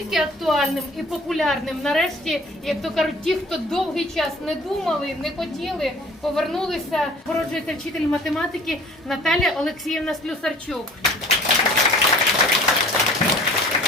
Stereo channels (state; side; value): normal; both; correlation 0.49